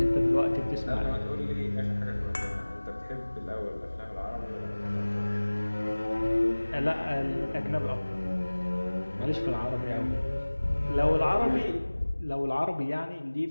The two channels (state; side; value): inverted; both; correlation -1.00